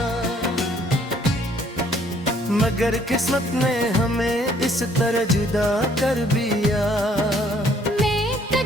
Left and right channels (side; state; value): both; normal; correlation 0.63